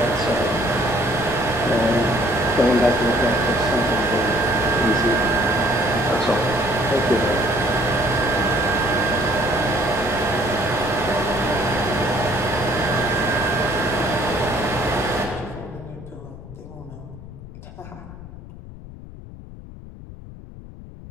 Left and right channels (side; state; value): left; noise; rumble, 15 dB below the sound